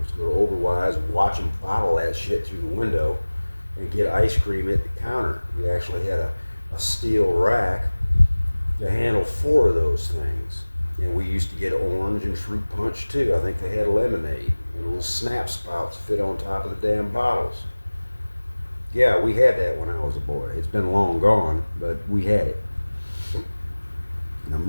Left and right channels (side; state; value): both; inverted; correlation -1.00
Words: go to Oberwise and watch them bottle that shit through the window and get ice cream at the counter. We actually had a steel rack to handle 4 of those things. And we used to get orange and fruit punch too. I think they had lemonade and little snap spouts fit on top of the damn bottles. Yeah, we had that when I was a boy. It's been long gone, but we had it. Them